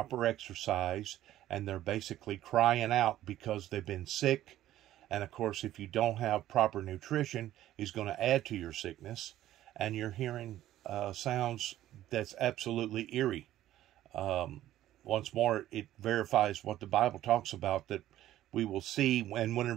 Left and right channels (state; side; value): quieter; left; 13.5 dB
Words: exercise, and they're basically crying out because they've been sick. And of course, if you don't have proper nutrition, it's going to add to your sickness. And you're hearing sounds that's absolutely eerie. Once more, it verifies what the Bible talks about, that we will see. And